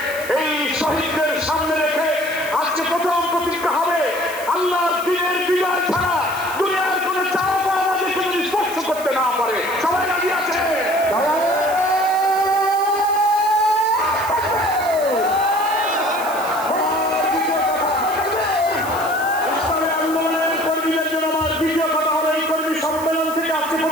এই শহীদদের সামনে রেখে আজকে প্রথম প্রতিজ্ঞা হবে, আল্লাহর দ্বীনের বিজয় ছাড়া দুনিয়ার কোন চাওয়া পাওয়া আমাদেরকে যদি স্পর্শ করতে না পারে। সবাই রাজি আছে? ইসলামের আন্দোলনের কর্মীদের জন্য আমার দ্বিতীয় কথা হবে, এই কর্মী সম্মেলন থেকে আজকে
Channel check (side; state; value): right; noise; hiss, 14 dB below the sound